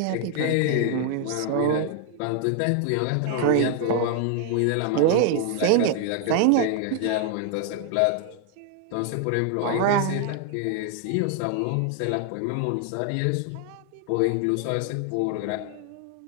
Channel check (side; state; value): both; different; correlation 0.00